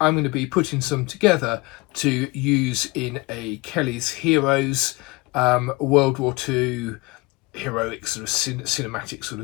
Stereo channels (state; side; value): quieter; right; 24.5 dB